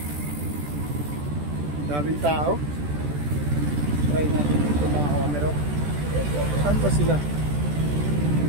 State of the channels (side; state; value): left; late; 14 ms